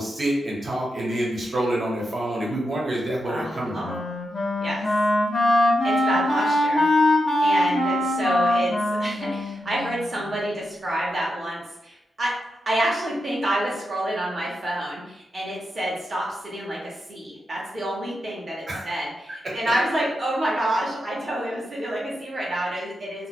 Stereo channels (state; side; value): normal; both; correlation 0.87